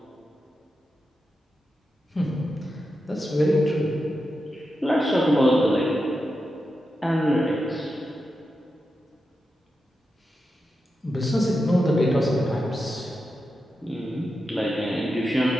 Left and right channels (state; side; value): normal; both; correlation 0.89